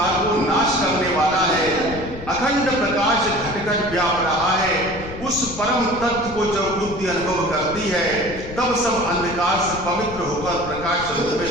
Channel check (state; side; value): noise; left; rumble, 12 dB below the sound